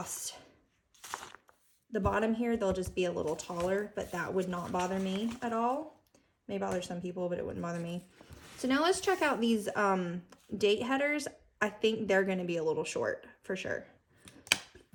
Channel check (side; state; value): both; identical; correlation 1.00